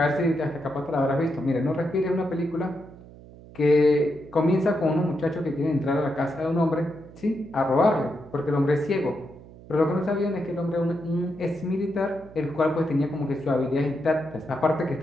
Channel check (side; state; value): right; noise; hum, 19 dB below the sound